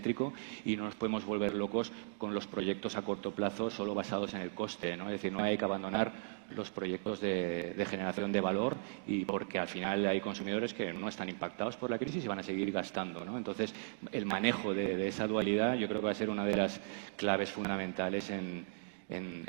y no nos podemos volver locos con los proyectos a corto plazo solo basados en el coste, ¿no? Es decir, no hay que abandonar los proyectos de generación de valor, y porque al final hay consumidores que no están impactados por la crisis y van a seguir gastando, ¿no? Entonces, el manejo de esa dualidad yo creo que va a ser una de las claves fundamentales en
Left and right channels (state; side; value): silent; left; digital silence